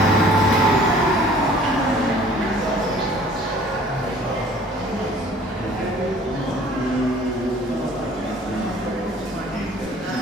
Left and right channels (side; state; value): both; normal; correlation 0.52